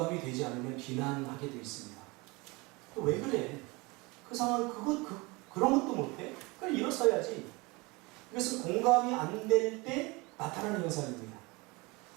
되지 않으면 비난하게 되어 있습니다. 또 왜 그래? 그 상황 그런 것도 못해? 그걸 일어서야지. 이것은 공감이 안 될 때 나타나는 현상입니다.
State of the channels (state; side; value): quieter; left; 25.5 dB